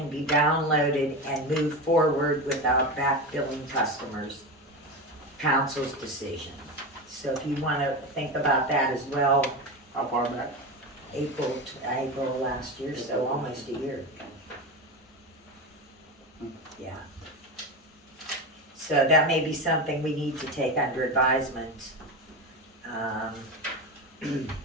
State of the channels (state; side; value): normal; both; correlation 0.21